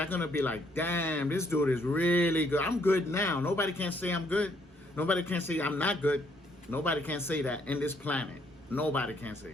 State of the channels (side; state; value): both; normal; correlation 0.69